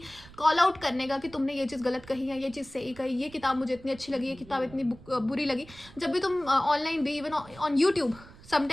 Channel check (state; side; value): noise; right; rumble, 20 dB below the sound